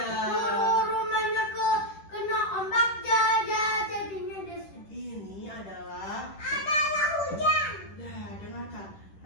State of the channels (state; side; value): late; right; 10 ms